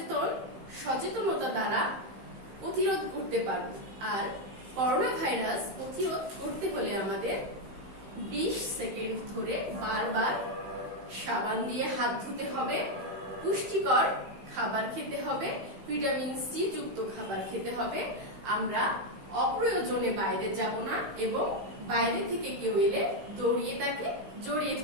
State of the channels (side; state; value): left; late; 15 ms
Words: সচেতনতা দ্বারা প্রতিরোধ করতে পারব। আর করোনা ভাইরাস প্রতিরোধ করতে হলে আমাদের 20 সেকেন্ড ধরে বারবার সাবান দিয়ে হাত ধুতে হবে, পুষ্টিকর খাবার খেতে হবে, ভিটামিন সি যুক্ত খাবার খেতে হবে। আমরা অপ্রয়োজনে বাইরে যাব না এবং বাইরে থেকে কেউ এলে দৌড়িয়ে তাকে জড়িয়ে